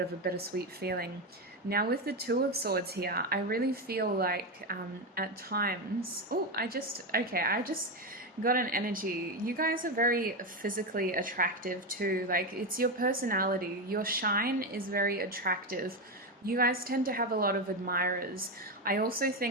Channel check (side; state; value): both; normal; correlation 0.12